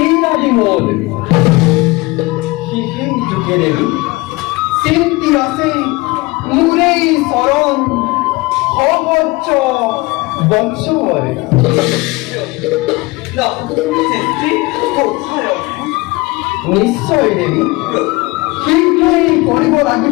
আদি মূল যুগে দেবী চিন্তি আছে মুরেই শরণ সহজ বংশবর নিশ্চয় দেবী শীঘ্রই কৰিব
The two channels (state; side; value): quieter; right; 23.1 dB